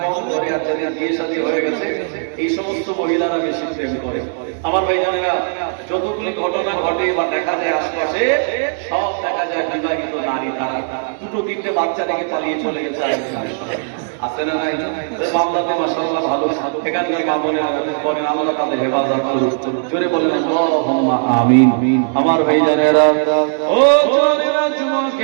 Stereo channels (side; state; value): left; silent; digital silence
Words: কম করে, আর যাদের বিয়ে শাদী হয়ে গেছে, এই সমস্ত মহিলারা বেশি প্রেম করে। আমার ভাইজানেরা, যতগুলি ঘটনা ঘটে বা দেখা যায় আশপাশে, সব দেখা যায় বিবাহিত নারী, তারা দুটো তিনটে বাচ্চা রেখে পালিয়ে চলে গেছে। আছে না নাই? মামলাতে মাশাআল্লাহ ভালো, এখানকার মা বোনেরা বলেন, আল্লাহ তাদের হেফাজত করুন। জোরে বলেন আল্লাহুম্মা আমিন। আমার ভাইজানেরা, ও জওয়ানেরা,